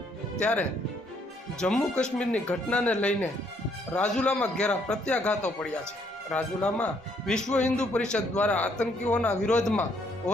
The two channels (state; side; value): normal; both; correlation 0.69